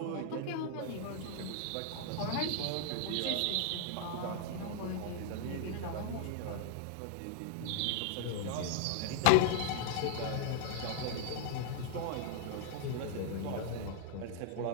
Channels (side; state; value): both; different; correlation 0.00